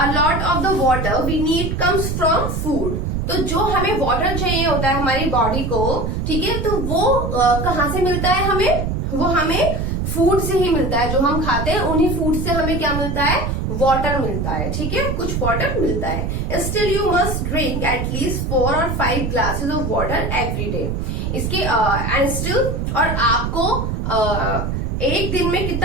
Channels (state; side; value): noise; right; rumble, 2 dB below the sound